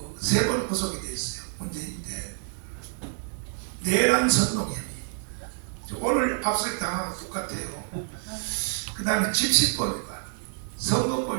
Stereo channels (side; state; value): left; silent; digital silence